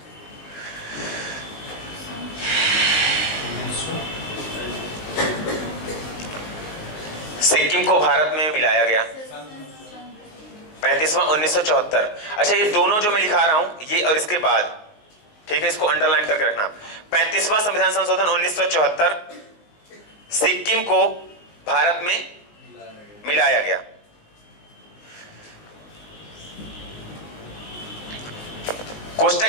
सिक्किम को भारत में मिलाया गया। 35वां 1974। अच्छा, ये दोनों जो मैं लिखा रहा हूं, ये और इसके बाद, ठीक है, इसको अंडरलाइन करके रखना। 35वां संविधान संशोधन 1974, सिक्किम को भारत में मिलाया गया। कोष्टक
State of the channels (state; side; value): late; right; 19 ms